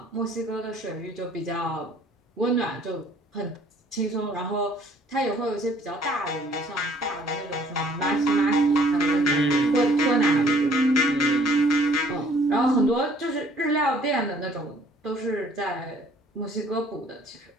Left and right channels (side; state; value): both; normal; correlation 0.58